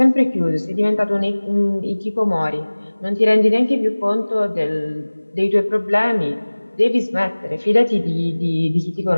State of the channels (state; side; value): inverted; both; correlation -1.00